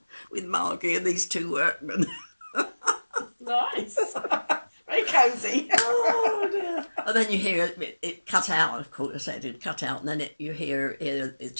with Margie and these two workmen. Nice. Very cosy. Oh dear. And then you hear it cut out, of course. I said it cut out, and then you hear a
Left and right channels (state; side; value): inverted; both; correlation -1.00